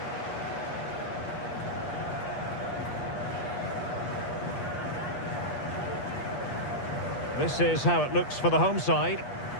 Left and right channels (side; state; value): right; late; 8.4 ms